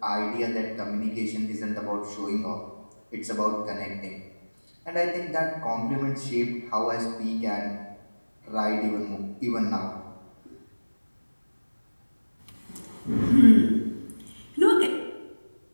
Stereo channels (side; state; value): both; inverted; correlation -1.00